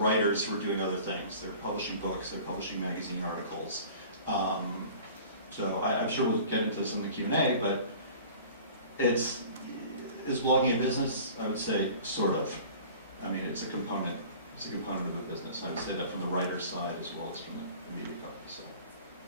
who are doing other things. They're publishing books, they're publishing magazine articles. So I'm sure we'll get into this in the Q&A, but is blogging a business? I would say sort of. I mean, it's a component. It's a component of a business. I would say that from the writer's side as well as from the media company. So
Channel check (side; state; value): both; inverted; correlation -0.44